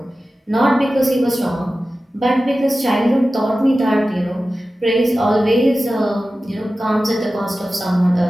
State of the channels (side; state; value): both; normal; correlation 0.95